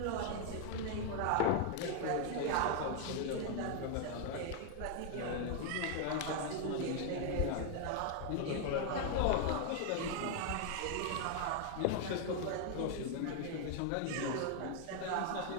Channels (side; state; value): both; different; correlation 0.00